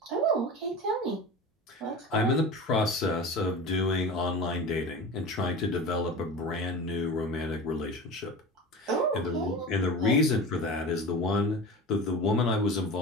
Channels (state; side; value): normal; both; correlation 0.31